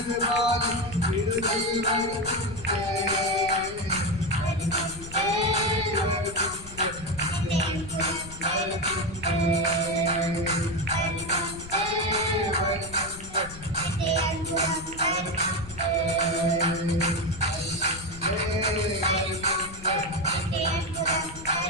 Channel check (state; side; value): noise; left; rumble, 15 dB below the sound